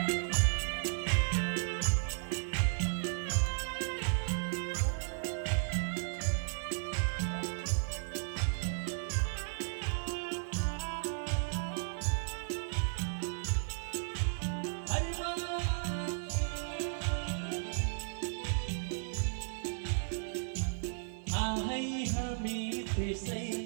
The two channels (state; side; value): silent; left; 54 dB below the other